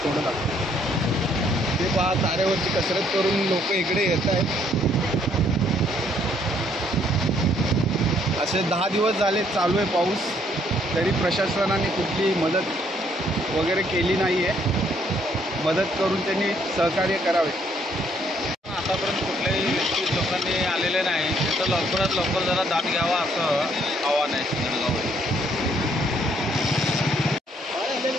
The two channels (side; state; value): both; normal; correlation 0.67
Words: थोडं लागतं ते पहा, तारेवरची कसरत करून लोक इकडे येत आहेत। असे 10 दिवस झाले चालू आहे पाऊस, तरी प्रशासनाने कुठली मदत वगैरे केली नाही आहे। मदत करून त्यांनी सहकार्य करावे। आतापर्यंत कुठल्याही व्यक्ती लोकांनी आलेले नाही, तर लवकरात लवकर जरा दाद घ्यावा असं आव्हान आहे सिंगडगाव।